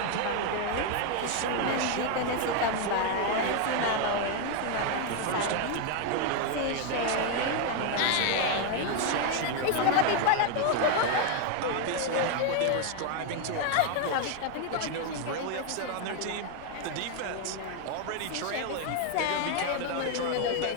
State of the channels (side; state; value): both; different; correlation 0.01